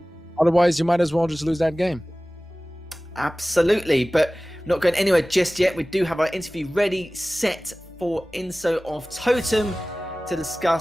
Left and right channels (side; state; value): both; normal; correlation 0.98